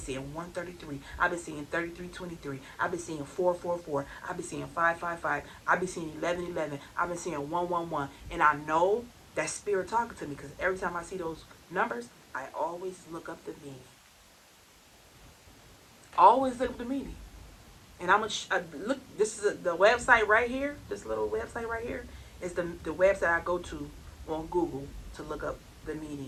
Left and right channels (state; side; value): identical; both; correlation 1.00